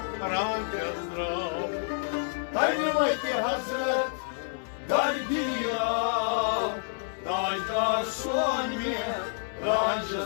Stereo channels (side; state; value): right; silent; digital silence